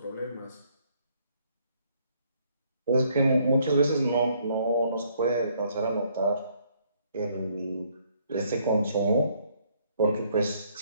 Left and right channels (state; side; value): inverted; both; correlation -0.67